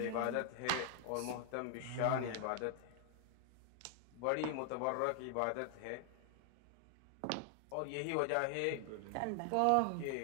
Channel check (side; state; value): both; different; correlation 0.00